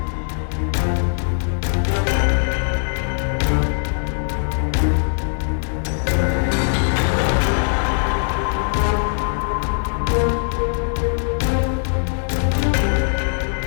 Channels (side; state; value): right; silent; digital silence